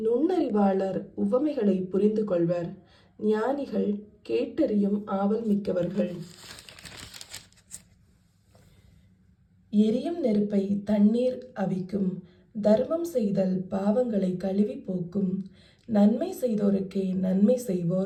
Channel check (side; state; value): both; identical; correlation 1.00